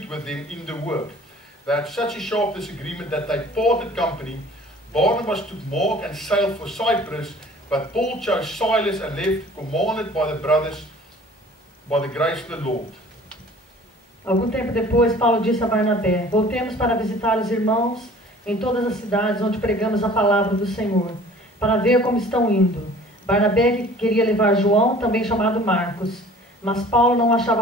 with them in the work. They had such a sharp disagreement that they parted company. Barnabas took Mark and sailed for Cyprus, but Paul chose Silas and left, commanded by the brothers by the grace of the Lord. Algum tempo depois, Paulo disse a Barnabé: Voltemos para visitar os irmãos em todas as cidades onde pregamos a palavra do Senhor, para ver como estão indo. Barnabé queria levar João, também chamado Marcos, mas Paulo não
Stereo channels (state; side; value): normal; both; correlation 0.49